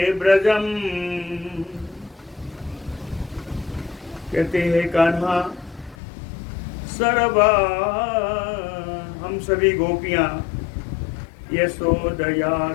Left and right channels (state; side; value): drops out; right; at 6.0 s